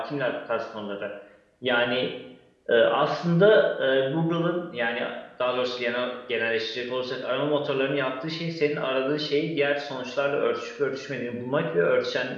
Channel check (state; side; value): identical; both; correlation 1.00